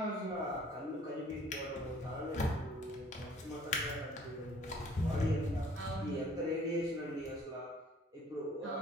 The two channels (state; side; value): normal; both; correlation 0.56